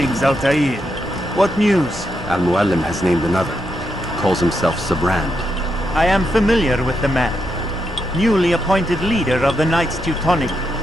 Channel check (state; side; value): normal; both; correlation 0.82